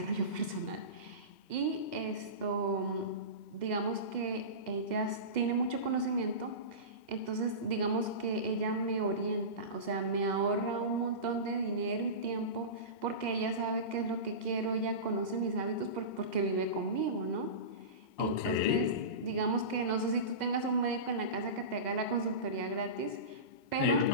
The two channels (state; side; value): late; right; 2.0 ms